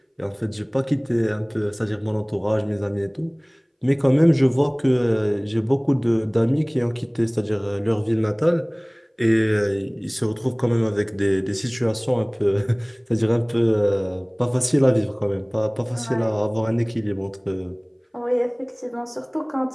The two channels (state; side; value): identical; both; correlation 1.00